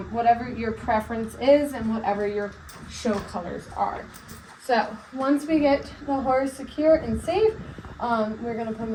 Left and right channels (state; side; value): identical; both; correlation 1.00